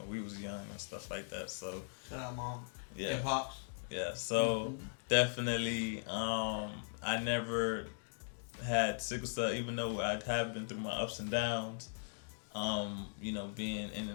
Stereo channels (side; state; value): right; silent; digital silence